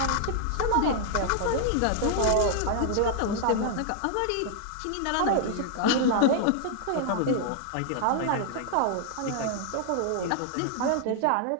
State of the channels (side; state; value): both; different; correlation 0.00